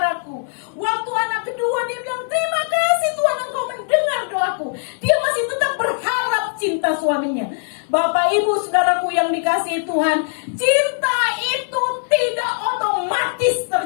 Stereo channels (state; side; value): silent; right; digital silence